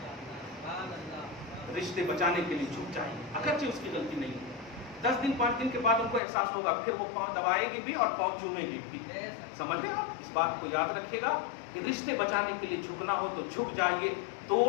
رشتے بچانے کے لیے جھک جائیں, اگرچہ اس کی غلطی نہیں ہے. 10 دن 5 دن کے بعد ان کو احساس ہوگا, پھر وہ پاؤں دبائے گی بھی اور پاؤں چومے گی بھی. سمجھ رہے آپ, اس بات کو یاد رکھیے گا کہ رشتے بچانے کے لیے جھکنا ہو تو جھک جائیے.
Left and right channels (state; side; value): drops out; right; at 6.2 s